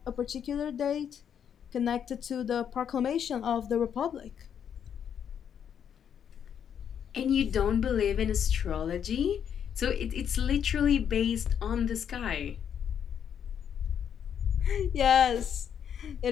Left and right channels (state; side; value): quieter; right; 8.5 dB